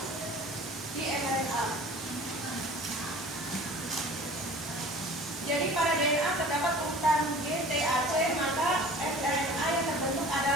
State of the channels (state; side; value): normal; both; correlation 0.44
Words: di mRNA. Jadi pada DNA terdapat urutan GTAC, maka mRNA yang terbentuk